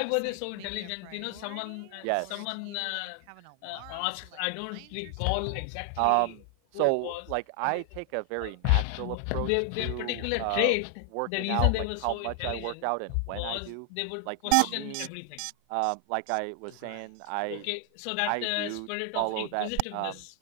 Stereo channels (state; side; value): different; both; correlation 0.00